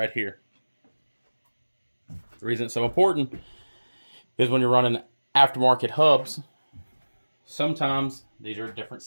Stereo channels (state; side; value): inverted; both; correlation -1.00